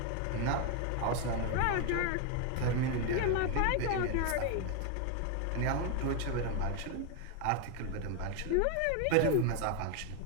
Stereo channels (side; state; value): both; different; correlation 0.01